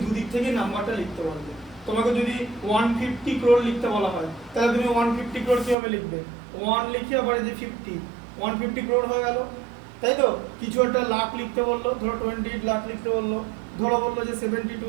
দুদিক থেকে নাম্বারটা লিখতে পারবে। তোমাকে যদি 150 crore লিখতে বলা হয় তাহলে তুমি 150 crore কিভাবে লিখবে, 1 লিখে আবার এই যে 50, 150 crore হয়ে গেল, তাই তো? কিছু একটা লাখ লিখতে বললো, ধরো 28 লাখ লিখতে বললো, ধরো বললো যে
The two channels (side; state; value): left; drops out; at 5.8 s